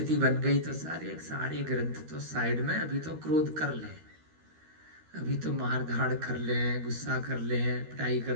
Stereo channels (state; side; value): late; left; 13 ms